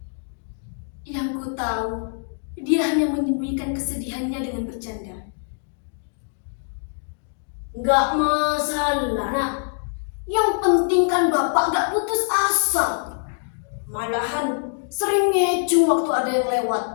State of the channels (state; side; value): silent; right; digital silence